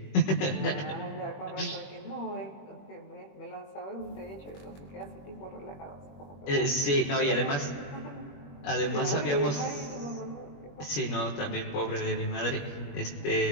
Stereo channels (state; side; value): late; right; 21 ms